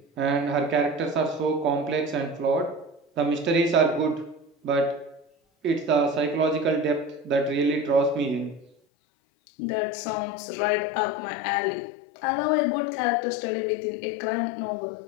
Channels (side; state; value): right; drops out; at 8.8 s